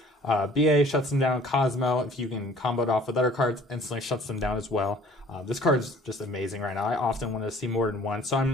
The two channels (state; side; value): normal; both; correlation 0.52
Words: BA shuts them down. Cosmo, if you can combo it off with other cards, instantly shuts them down as well. This card is just amazing right now. I often want to see more than one, so